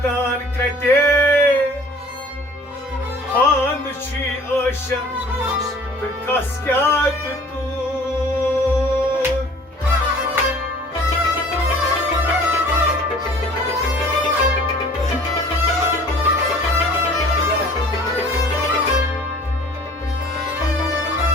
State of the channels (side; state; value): both; normal; correlation 0.50